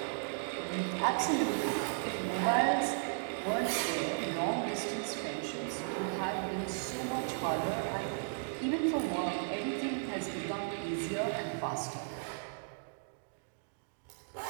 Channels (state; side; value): silent; left; digital silence